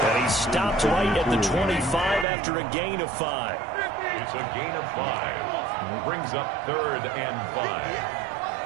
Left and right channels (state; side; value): drops out; left; at 2.2 s